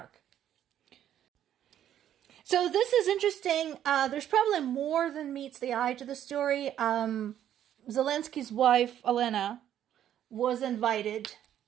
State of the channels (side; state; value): left; quieter; 10.8 dB